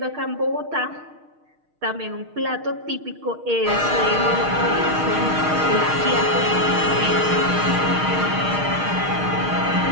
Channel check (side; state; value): left; late; 6.5 ms